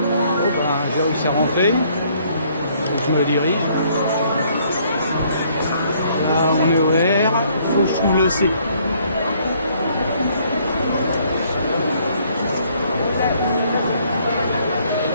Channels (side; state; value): both; inverted; correlation -0.65